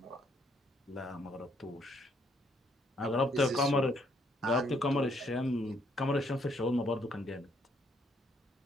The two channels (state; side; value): normal; both; correlation 0.69